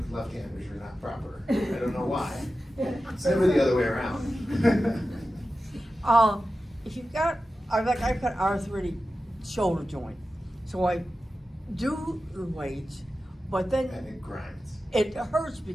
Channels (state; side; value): normal; both; correlation 0.93